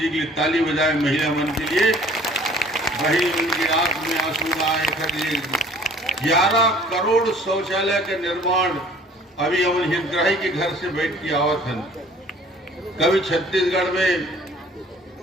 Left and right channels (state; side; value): normal; both; correlation 0.53